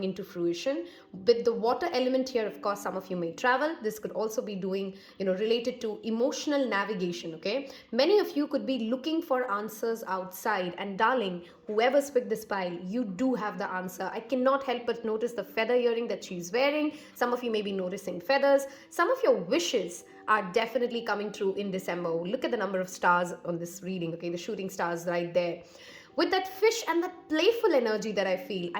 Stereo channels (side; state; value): both; identical; correlation 1.00